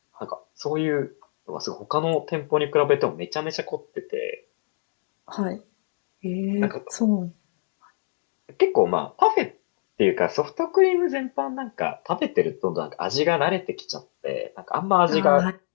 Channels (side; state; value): right; silent; digital silence